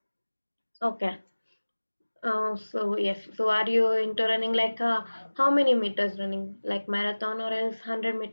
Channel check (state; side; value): inverted; both; correlation -1.00